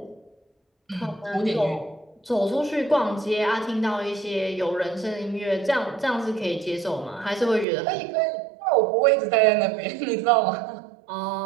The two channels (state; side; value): drops out; left; at 7.7 s